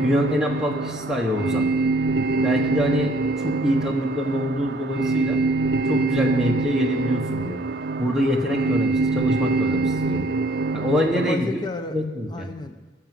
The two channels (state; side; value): normal; both; correlation 0.59